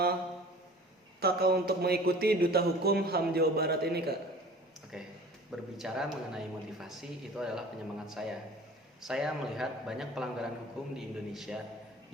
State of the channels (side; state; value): both; normal; correlation 0.44